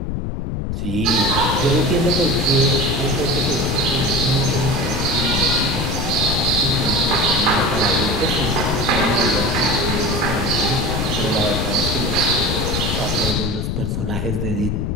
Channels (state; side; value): noise; left; rumble, 2 dB below the sound